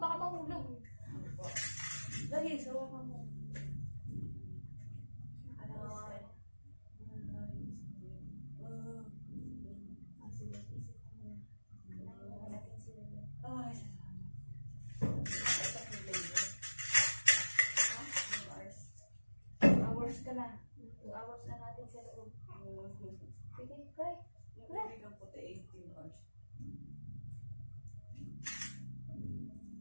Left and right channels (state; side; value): inverted; both; correlation -1.00